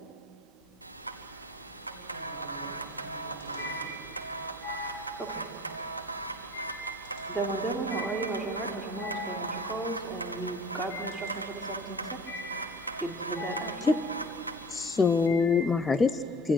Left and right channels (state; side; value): normal; both; correlation 0.43